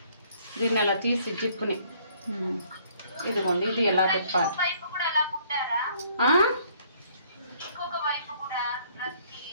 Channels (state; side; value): inverted; both; correlation -0.61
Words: దీన్ని ఇలా తీసి జిప్పుని ఇదిగోండి, ఇది ఎలా తిప్పాలి.